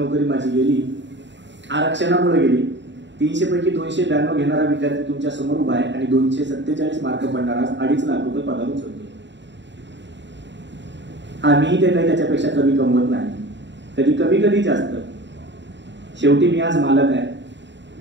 माझी गेली, आरक्षणामुळे गेली. 300 पैकी 292 घेणारा विद्यार्थी तुमच्या समोर उभा आहे आणि 247 मार्क पडणारा 2.5 लाख रुपये पगार उचलतो. आम्ही ते काही त्याच्यापेक्षा कमी कमवत नाही. कधी कमी कधी जास्त. शेवटी मी आज मालक आहे,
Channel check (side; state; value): left; late; 0.52 ms